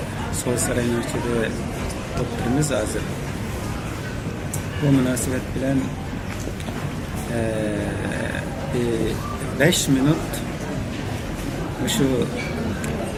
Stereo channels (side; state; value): both; identical; correlation 1.00